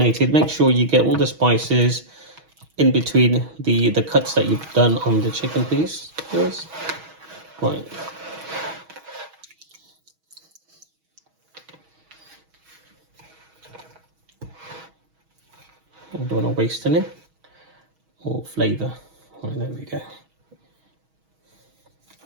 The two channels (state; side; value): late; left; 6.3 ms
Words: Make sure you get all the spices in between the cuts that you've done on the chicken piece. Yes. Right. I don't want to waste any or flavour. Right, there we go.